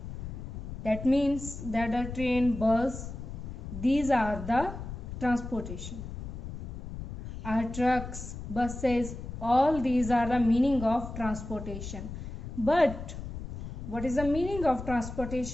that means that the train, बस, these are the transportation. Our trucks, buses, all these are the meaning of transportation. But what is the meaning of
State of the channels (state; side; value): noise; left; rumble, 8 dB below the sound